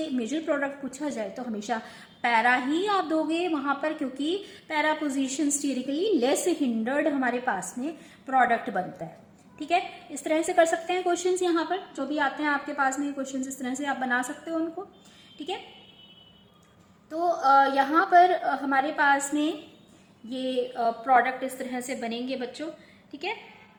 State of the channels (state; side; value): identical; both; correlation 1.00